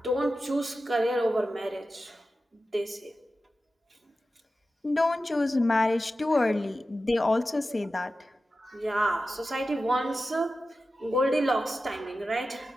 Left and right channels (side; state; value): both; normal; correlation 0.93